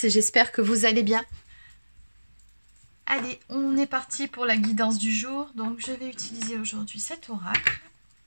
j'espère que vous allez bien. Allez, on est parti pour la guidance du jour. Donc je vais utiliser aujourd'hui cet oracle.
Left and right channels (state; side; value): inverted; both; correlation -1.00